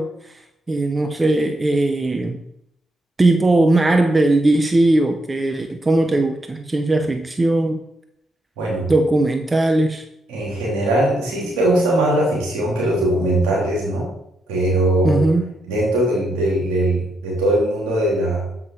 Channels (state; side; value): normal; both; correlation 0.80